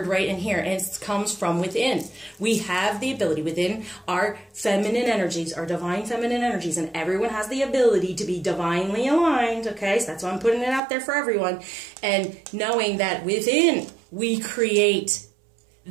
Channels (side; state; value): left; drops out; at 10.8 s